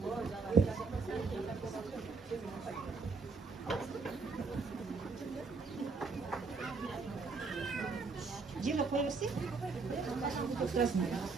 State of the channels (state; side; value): quieter; left; 4.4 dB